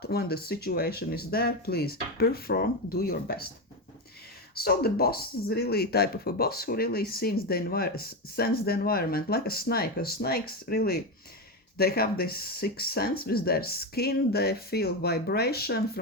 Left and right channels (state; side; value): normal; both; correlation 0.14